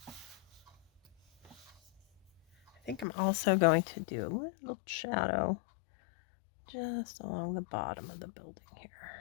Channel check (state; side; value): drops out; right; at 3.1 s